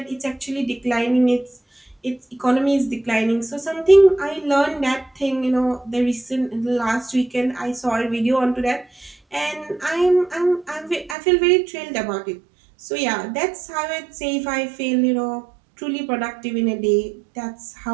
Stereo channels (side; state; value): left; drops out; at 11.2 s